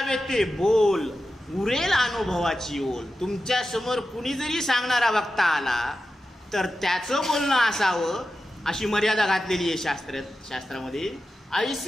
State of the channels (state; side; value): normal; both; correlation 0.92